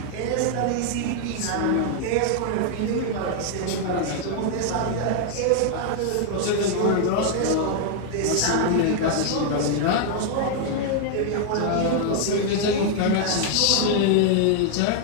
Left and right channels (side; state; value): both; different; correlation 0.00